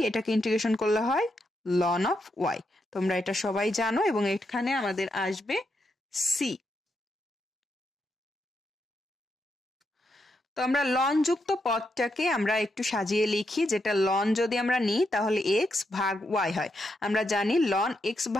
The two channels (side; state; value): both; normal; correlation 0.82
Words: এটাকে ইন্টিগ্রেশন করলে হয় লন অফ ওয়াই। তোমরা এটা সবাই জানো, এবং এখানে আমাদের আসবে সি। তো আমরা লন যুক্ত পদটাকে আমরা একটু সাজিয়ে লিখি, যেটা লন যদি আমরা নিই তাহলে এক্স ভাগ ওয়াই হয়। আমরা জানি লন এক্স